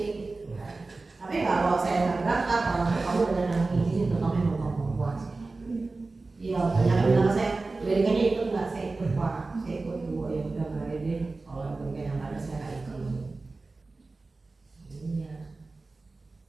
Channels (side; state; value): left; quieter; 3.5 dB